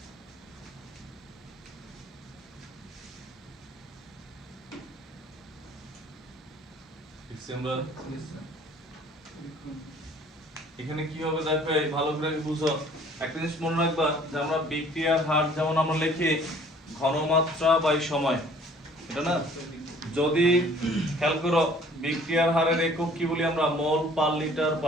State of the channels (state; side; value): normal; both; correlation 0.54